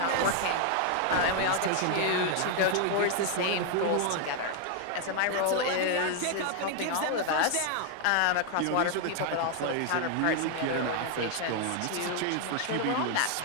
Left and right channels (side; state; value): both; different; correlation 0.00